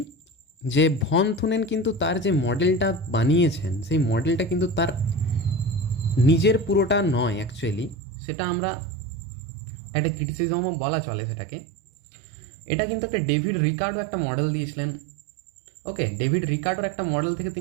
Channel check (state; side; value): drops out; left; at 8.0 s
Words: যে ভন থুনেন কিন্তু তার যে মডেলটা বানিয়েছেন সেই মডেলটা কিন্তু তার নিজের পুরোটা নয় অ্যাকচুয়ালি, সেটা আমরা একটা ক্রিটিসিজমও বলা চলে সেটাকে। এটা কিন্তু একটা ডেভিড রিকার্ডো একটা মডেল দিয়েছিলেন। ওকে, ডেভিড রিকার্ডোর একটা মডেল থেকে